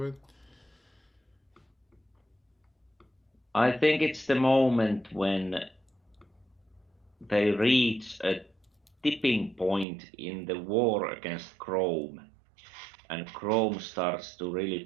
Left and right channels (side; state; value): left; drops out; at 9.9 s